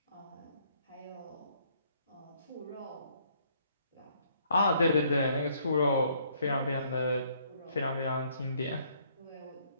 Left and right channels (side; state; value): both; inverted; correlation -0.66